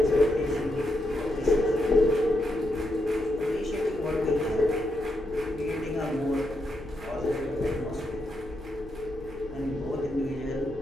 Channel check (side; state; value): left; noise; hum, 18 dB below the sound